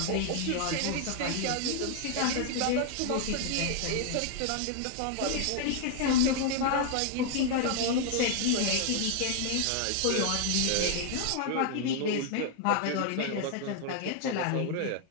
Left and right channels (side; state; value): both; different; correlation 0.00